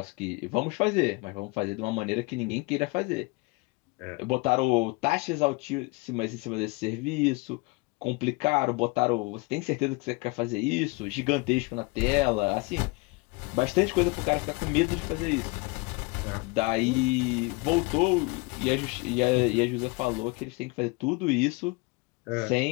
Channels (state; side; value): quieter; right; 26.8 dB